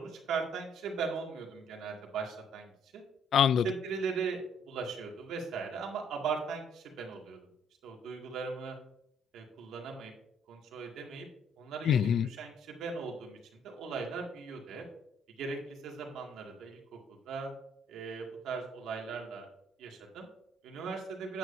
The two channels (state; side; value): normal; both; correlation 0.64